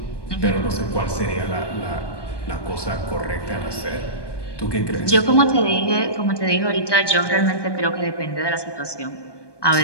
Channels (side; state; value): right; late; 1.2 ms